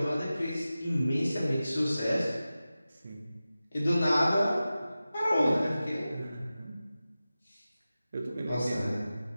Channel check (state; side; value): inverted; both; correlation -0.95